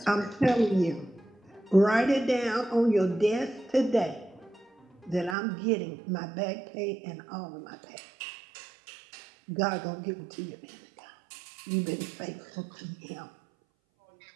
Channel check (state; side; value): drops out; left; at 5.4 s